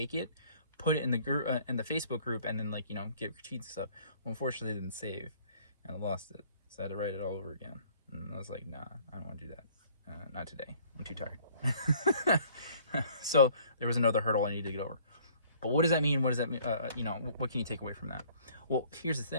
it, put it in the group, in the Facebook group, and then, like, you know, get critiques and stuff. Well, unfortunately, it didn't save, and I lost it, so I had to write it all over again. And I was like, nah, I don't want to do that. Not today. I'm too tired. So there was another hurdle I needed to get over. But what does that mean? What does that mean? You know, what can you take away from that? Well, here's the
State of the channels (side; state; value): both; inverted; correlation -0.57